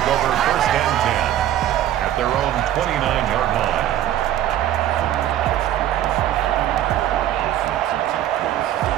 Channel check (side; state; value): left; quieter; 12.2 dB